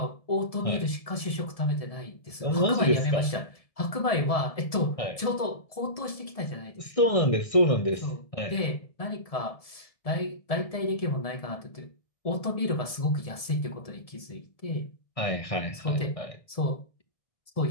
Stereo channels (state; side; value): late; right; 1.7 ms